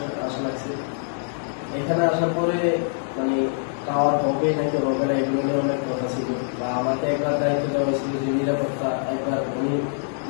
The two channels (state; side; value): silent; right; digital silence